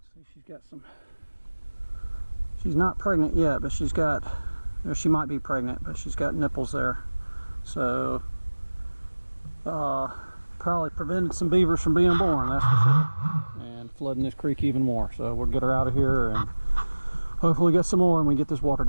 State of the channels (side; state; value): both; inverted; correlation -1.00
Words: see, she's got some. She's not pregnant yet, but she's got, or she might be pregnant, but she's got nipples there. So, probably prevented some beavers from being born, that's for sure. And flooding this creek even more. So we'll get her out of here and hopefully get some more and we get this water